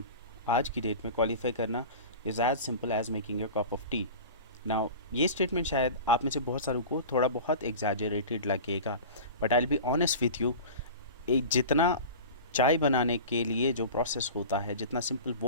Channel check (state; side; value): inverted; both; correlation -0.34